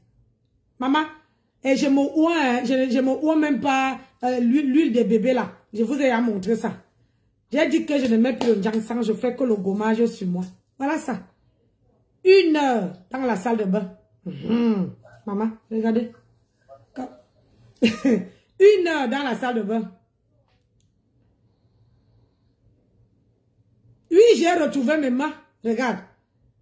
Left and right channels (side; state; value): both; identical; correlation 1.00